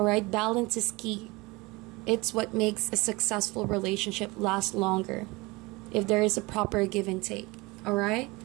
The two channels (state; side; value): quieter; left; 23.7 dB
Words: Balance is key. It's what makes a successful relationship last longer, if there is a proper give and take. Alright?